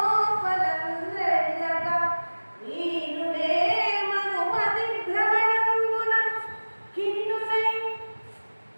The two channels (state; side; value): inverted; both; correlation -1.00